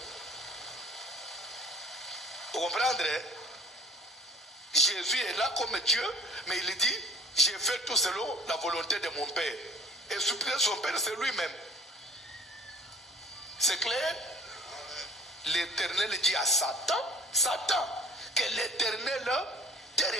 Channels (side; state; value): both; normal; correlation 0.47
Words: Vous comprenez? Jésus est là comme Dieu, mais il dit, j'ai fait tout selon la volonté de mon Père. Et supplier son Père, c'est lui-même. C'est clair? L'Éternel dit à Satan, Satan, que l'Éternel te